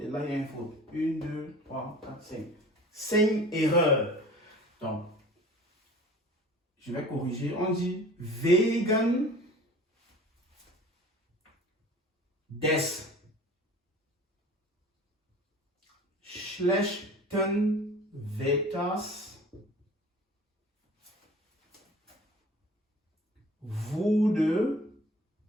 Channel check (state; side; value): normal; both; correlation 0.44